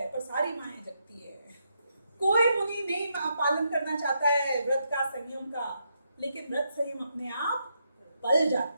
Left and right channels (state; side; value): inverted; both; correlation -0.80